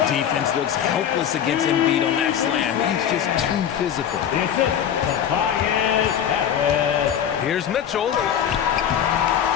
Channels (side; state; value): right; quieter; 9.2 dB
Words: Defense looks helpless against Embiid on that slam. He's just too physical. Here's Mitchell.